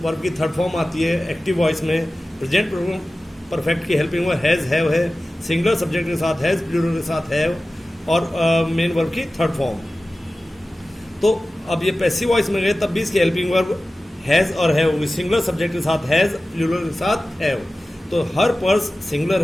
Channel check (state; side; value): normal; both; correlation 0.96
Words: वर्ब की थर्ड फॉर्म आती है एक्टिव वॉइस में। प्रेजेंट परफेक्ट की हेल्पिंग हुआ हैज हैव है। सिंगुलर सब्जेक्ट के साथ हैज, प्लूरल के साथ हैव और मेन वर्ब की थर्ड फॉर्म। तो अब ये पैसिव वॉइस में गए तब भी इसकी हेल्पिंग वर्ब हैज और हैव होगी। सिंगुलर सब्जेक्ट के साथ हैज, प्लूरल के साथ हैव। तो हर पर्स सिंगुलर